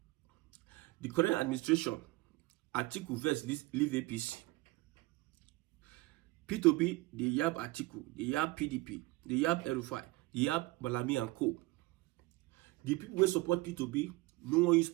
The current administration, Atiku versus leave APC. Peter Obi, they yab Atiku, they yab PDP, they yab Erufai, they yab Malami and Co. The people who support Peter Obi, no one use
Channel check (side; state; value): left; quieter; 21.4 dB